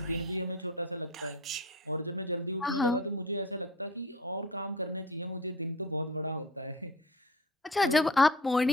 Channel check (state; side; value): normal; both; correlation 0.37